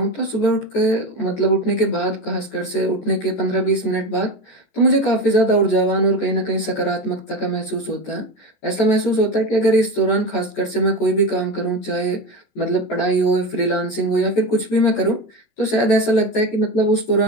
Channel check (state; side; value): late; right; 14 ms